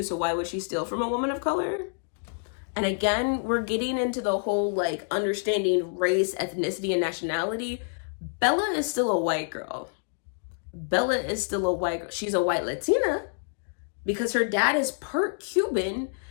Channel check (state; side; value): silent; right; digital silence